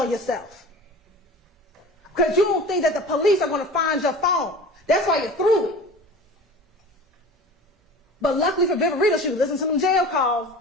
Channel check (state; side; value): normal; both; correlation 0.38